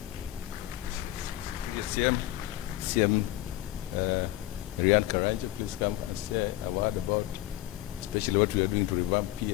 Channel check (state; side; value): quieter; right; 15.6 dB